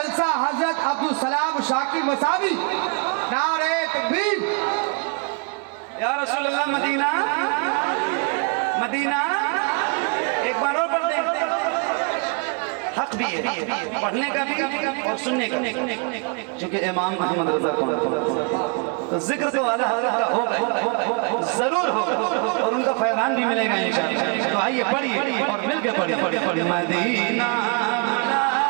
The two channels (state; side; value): quieter; left; 33.6 dB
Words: हजरत अब्दुल सलाम शाकिर मसावी। नारे तकबीर। या रसूल अल्लाह मदीना मदीना। एक बार और पढ़ दे, हक भी है पढ़ने का भी और सुनने का, क्योंकि इमाम अहमद रजा कौन तो जिक्र तो वाला हजरत का होगा, जरूर होगा और उनका फैजान भी मिलेगा इंशाअल्लाह। तो आइए पढ़िए और मिलकर पढ़िए। मदीना